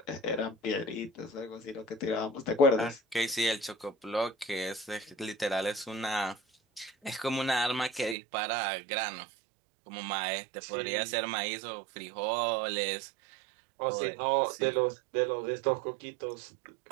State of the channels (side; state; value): left; drops out; at 8.2 s